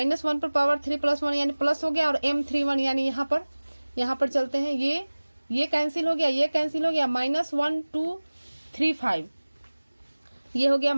पर पावर 3 + 1 यानी प्लस हो गया, और M31 यानी यहाँ पर चलते हैं, ये कैंसिल हो गया, ये कैंसिल हो गया, -1 2 3 5, ये हो गया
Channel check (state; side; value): inverted; both; correlation -1.00